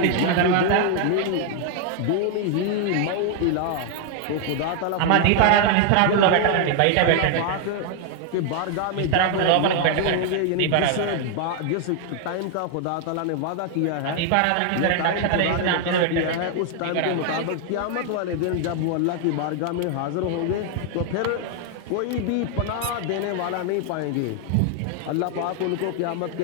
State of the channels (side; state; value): both; different; correlation 0.00